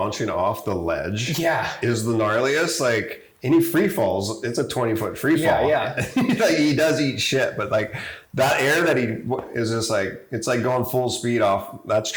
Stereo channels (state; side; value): identical; both; correlation 1.00